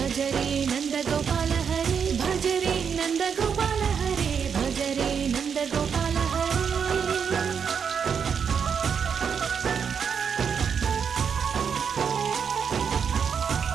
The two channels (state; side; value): quieter; left; 6.9 dB